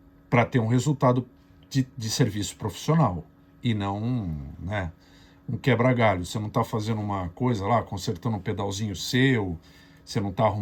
para ter um resultado de serviço profissional e não, né, um quebra-galho. Você não está fazendo uma coisa lá, consertando um pedalzinho seu, você não está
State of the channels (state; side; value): identical; both; correlation 1.00